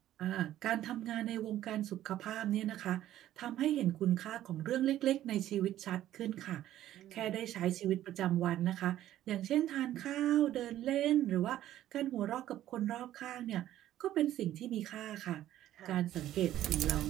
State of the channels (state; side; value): quieter; left; 13.0 dB